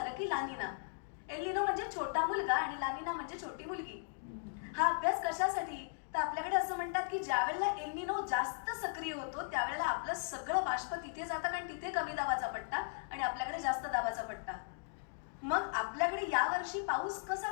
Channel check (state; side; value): silent; right; digital silence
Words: की लानिना. एल्निनो म्हणजे छोटा मुलगा आणि लानिना म्हणजे छोटी मुलगी. हा अभ्यास कशासाठी? तर आपल्याकडे असं म्हणतात की ज्या वेळेला एल्निनो जास्त सक्रिय होतो त्यावेळेला आपलं सगळं बाष्प तिथे जातं, कारण तिथे कमी दाबाचा पट्टा आणि आपल्याकडे जास्त दाबाचा पट्टा. मग आपल्याकडे यावर्षी पाऊस